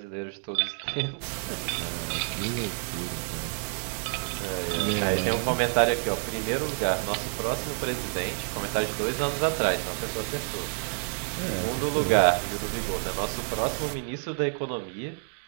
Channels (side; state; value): left; silent; 59 dB below the other